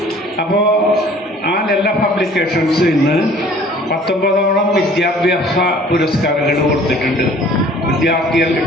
അപ്പോൾ ആ എല്ലാ പബ്ലിക്കേഷൻസ് ഇന്ന് 19ഓളം വിദ്യാഭ്യാസ പുരസ്കാരങ്ങൾ കൊടുത്തിട്ടുണ്ട്. വിദ്യാർത്ഥികൾക്ക്,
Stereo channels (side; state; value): both; normal; correlation 0.52